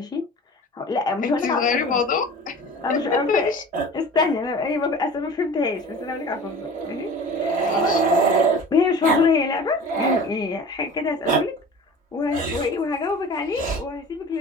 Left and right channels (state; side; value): normal; both; correlation 0.40